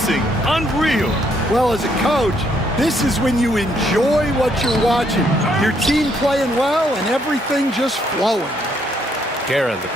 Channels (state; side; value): normal; both; correlation 0.71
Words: Unreal. Well, as a coach, this is when you enjoy what you're watching. Your team playing well and everything just flowing. Guerin, the